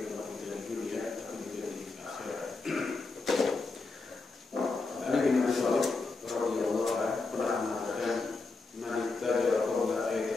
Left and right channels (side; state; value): right; quieter; 3.8 dB